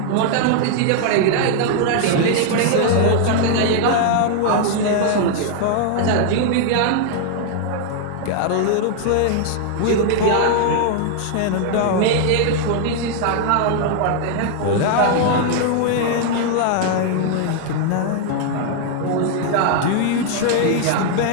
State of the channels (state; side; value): different; both; correlation 0.00